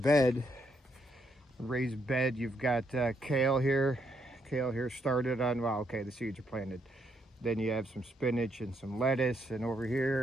bed. You've got kale here. Kale here started on, well, okay, the seeds are planted. Then you have some spinach and some lettuce, and over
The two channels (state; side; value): normal; both; correlation 0.76